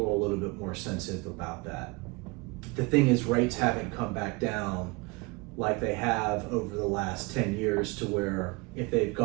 are a little bit more sensitive about that. The thing is, rates haven't come back down like they have over the last 10 years to where if they've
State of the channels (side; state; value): left; quieter; 26.6 dB